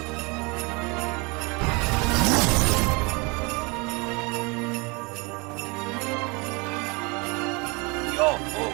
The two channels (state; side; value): quieter; left; 28.7 dB